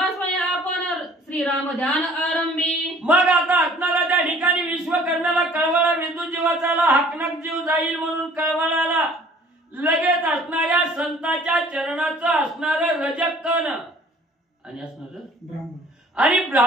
स्वयं आपण श्रीराम ध्यान आरंभी. मग आता असणारा त्या ठिकाणी विश्वकर्म्याला कळवळा विंधुजीवाचा हाकनक जीव जाईल म्हणून कळवळाला. लगेच असणाऱ्या संताच्या चरणाचं असणारं रजकण आणि असणारं आणि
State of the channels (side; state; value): both; normal; correlation 0.53